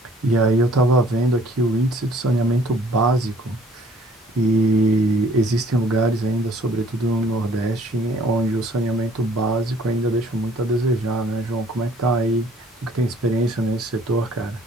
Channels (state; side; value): normal; both; correlation 0.58